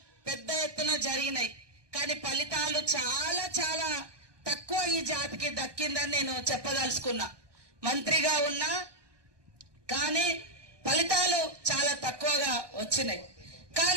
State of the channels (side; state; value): left; late; 1.2 ms